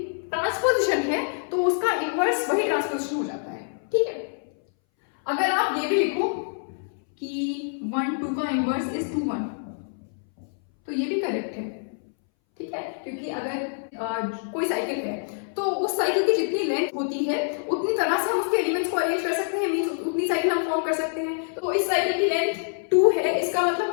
ट्रांसपोजिशन है तो उसका इनवर्स वही ट्रांसपोजिशन हो जाता है. ठीक है, अगर आप ये भी लिखो कि 1, 2 का इनवर्स इज 2, 1 तो ये भी करेक्ट है. ठीक है, क्योंकि अगर कोई साइकिल है तो उस साइकिल की जितनी लेंथ होती है उतनी तरह से हम उसके एलिमेंट्स को अरेंज कर सकते हैं. मींस उतनी साइकिल हम फॉर्म कर सकते हैं. तो इस साइकिल की लेंथ 2 है, इसका मतलब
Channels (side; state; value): right; silent; 60 dB below the other